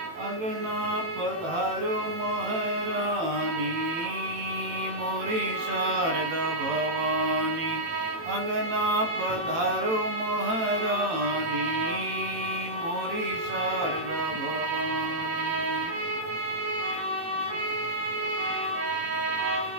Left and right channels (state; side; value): late; left; 18 ms